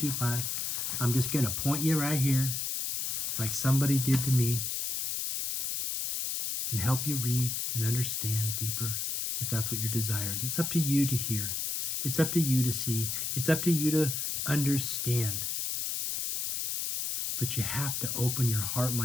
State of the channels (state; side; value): noise; left; hiss, 1 dB below the sound